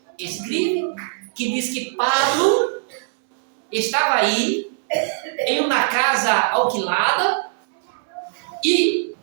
escreve, que diz que Paulo estava aí em uma casa alquilada e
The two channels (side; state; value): left; silent; digital silence